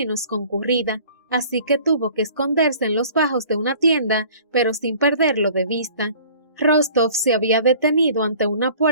concurrida, así que tuvo que esconderse en los bajos de una tienda, pero sin perderlo de vista. Rostov se había detenido ante una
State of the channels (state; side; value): inverted; both; correlation -0.49